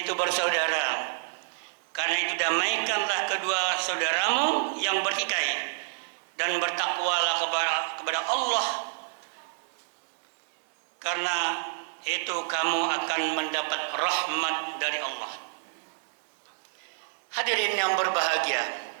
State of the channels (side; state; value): left; silent; digital silence